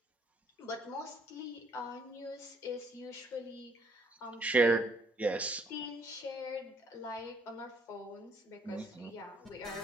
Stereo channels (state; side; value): normal; both; correlation 0.64